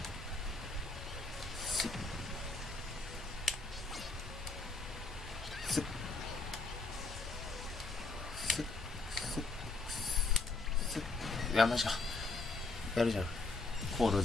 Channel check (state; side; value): quieter; right; 3.6 dB